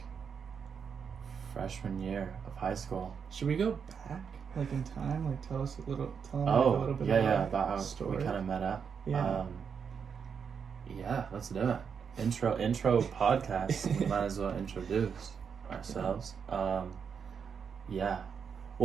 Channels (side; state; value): left; quieter; 6.6 dB